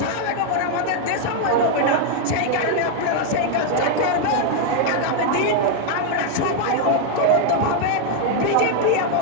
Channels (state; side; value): different; both; correlation 0.00